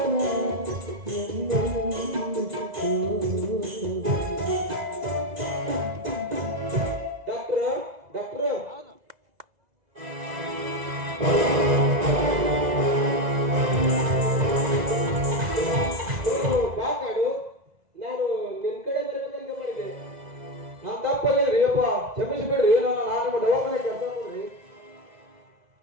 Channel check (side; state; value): left; late; 2.0 ms